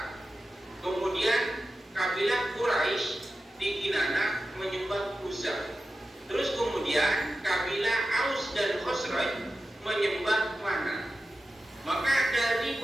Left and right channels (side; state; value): both; normal; correlation 0.93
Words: Kemudian kabilah Quraisy di Kinana menyembah Uzza. Terus kemudian kabilah Aus dan Khosraj menyembah Mana. Maka dari